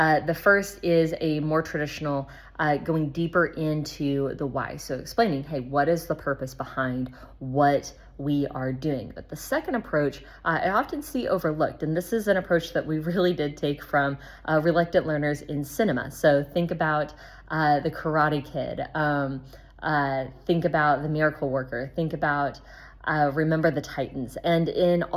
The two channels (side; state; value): both; identical; correlation 1.00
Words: first is a more traditional going deeper into the why. So explaining, hey, what is the purpose behind what we are doing? But the second approach, I often see overlooked, and this is an approach that we really did take from reluctant learners in cinema. So think about the Karate Kid, think about the Miracle Worker, think about Remember the Titans. And in